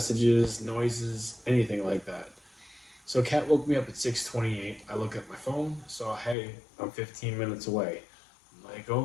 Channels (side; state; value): right; drops out; at 6.4 s